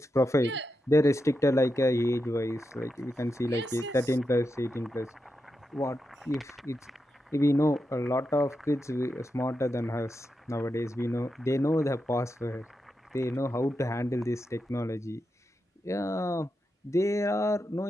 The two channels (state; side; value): normal; both; correlation 0.87